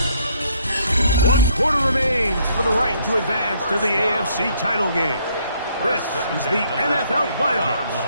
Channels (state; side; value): inverted; both; correlation -0.68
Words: 1 quarter remains for the right to advance to the AFC title game. This is the NFL playoffs